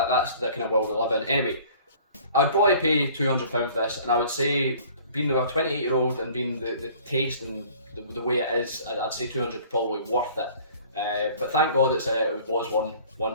the kind of world we live in. Anyway, I'd probably pay £200 for this, and I would say, being a 28-year-old and being the taste and the way it is, I'd say 200 probably worth it. But thank God it was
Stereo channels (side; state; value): both; inverted; correlation -0.51